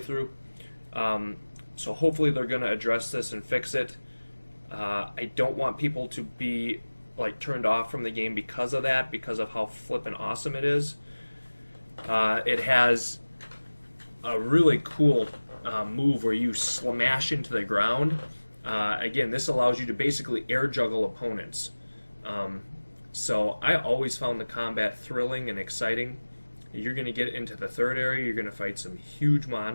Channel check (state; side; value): inverted; both; correlation -1.00